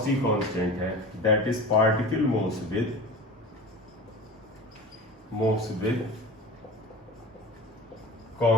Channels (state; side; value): normal; both; correlation 0.34